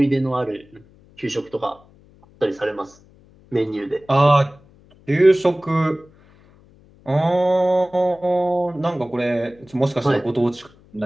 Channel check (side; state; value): left; noise; hum, 28 dB below the sound